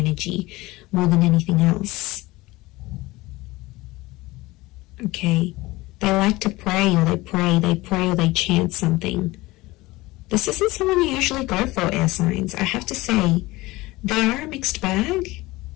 more than anything else. Okay, they like to pray, or they chant something. This isn't someone you usually go for, air signs. I have to say, they are a mixed bag,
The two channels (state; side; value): quieter; right; 20.3 dB